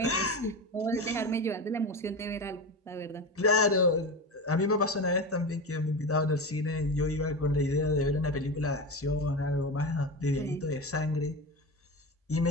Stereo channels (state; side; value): normal; both; correlation 0.23